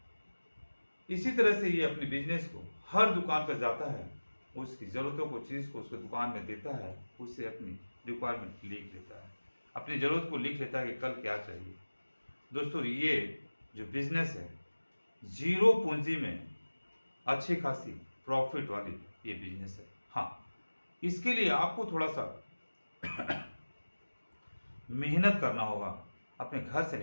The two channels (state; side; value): inverted; both; correlation -1.00